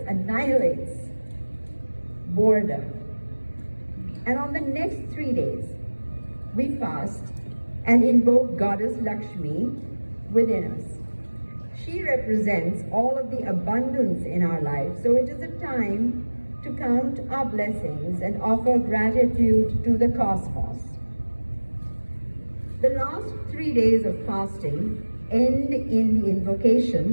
annihilates boredom. And on the next 3 days, we fast and invoke Goddess Lakshmi within us. She represents all of the abundance in our life, so it is a time to count our blessings and offer gratitude to the cosmos. The last 3 days of fasting end in the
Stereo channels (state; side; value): inverted; both; correlation -1.00